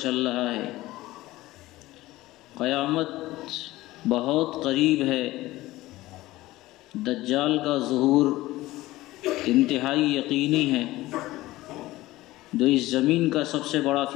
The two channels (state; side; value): quieter; right; 17.7 dB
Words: رہا ہے، قیامت بہت قریب ہے، دجال کا ظہور انتہائی یقینی ہے، جو اس زمین کا سب سے بڑا